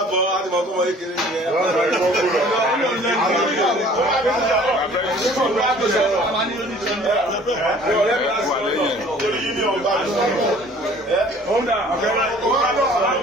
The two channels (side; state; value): both; normal; correlation 0.52